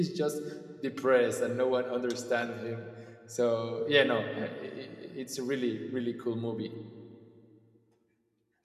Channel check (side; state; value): both; identical; correlation 1.00